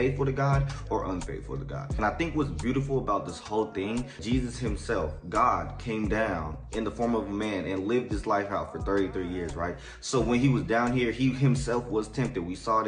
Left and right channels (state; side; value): identical; both; correlation 1.00